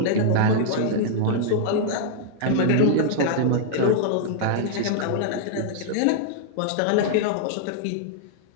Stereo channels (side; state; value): both; different; correlation -0.01